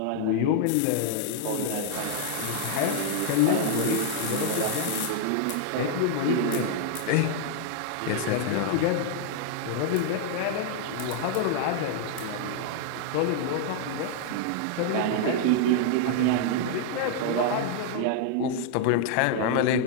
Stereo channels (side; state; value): both; different; correlation 0.00